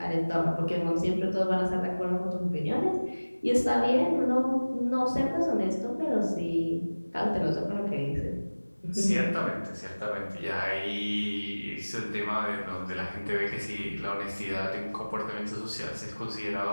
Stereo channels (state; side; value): inverted; both; correlation -1.00